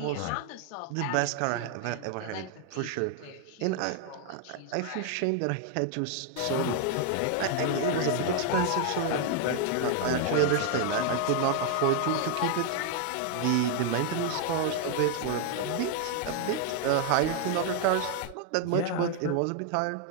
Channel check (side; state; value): both; different; correlation 0.00